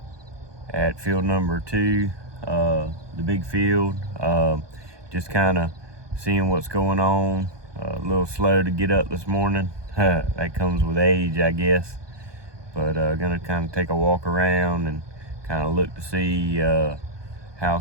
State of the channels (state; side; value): late; left; 1.2 ms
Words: at field number 2, the big field. Just kind of seeing what's going on. A little slow to get up this morning. That comes with age, I guess. But gonna kind of take a walk around and kind of look to see how